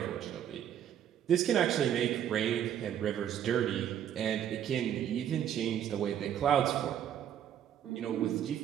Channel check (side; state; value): left; quieter; 10.0 dB